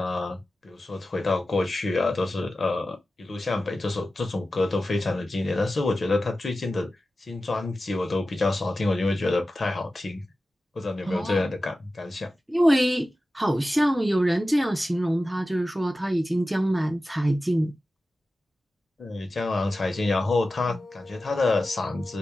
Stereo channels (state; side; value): normal; both; correlation 0.94